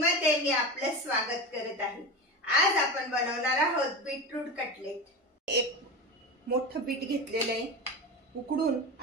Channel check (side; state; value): both; normal; correlation 0.25